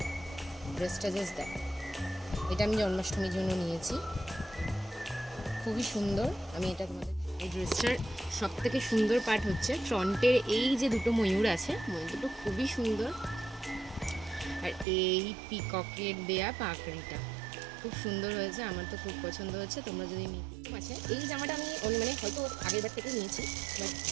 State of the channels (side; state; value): left; drops out; at 14.9 s